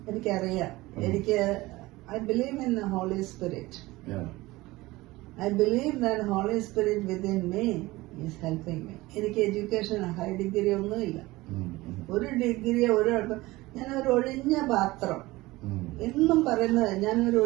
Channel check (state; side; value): quieter; left; 19.8 dB